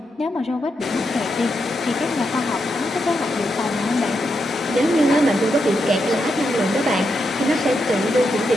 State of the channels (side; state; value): both; normal; correlation 0.83